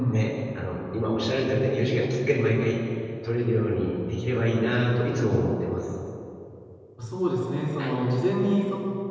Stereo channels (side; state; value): both; identical; correlation 1.00